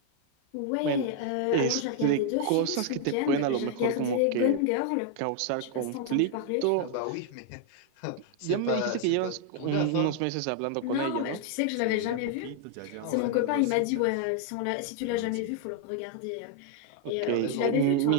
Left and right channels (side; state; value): both; different; correlation 0.00